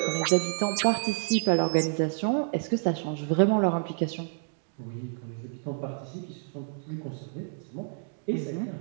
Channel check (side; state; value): left; silent; digital silence